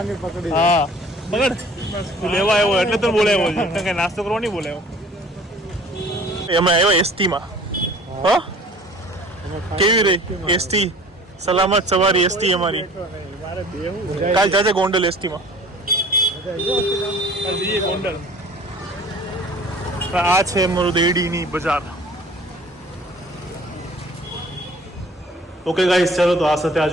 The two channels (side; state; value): both; normal; correlation 0.48